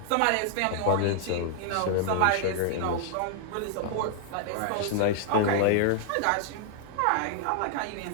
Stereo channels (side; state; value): both; different; correlation 0.00